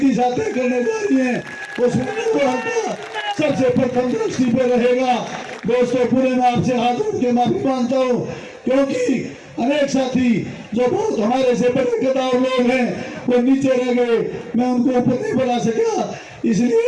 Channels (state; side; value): identical; both; correlation 1.00